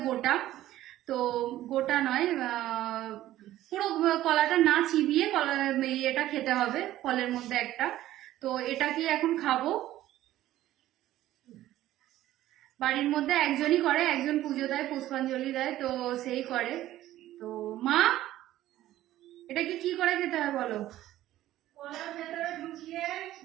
গোটা। তো গোটা নয়, পুরো কলাটা না চিবিয়ে এটা খেতে হবে ফলের মধ্যে একটা। তো এটা কি এখন খাবো। বাড়ির মধ্যে একজনই করে, একজন পুজো দেয়, পুষ্পাঞ্জলি দেয়, তো সেই করে। তো মা, এটাকে কি করে খেতে হয় বলো? কলার ভেতরে ঢুকিয়ে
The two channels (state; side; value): quieter; left; 14.2 dB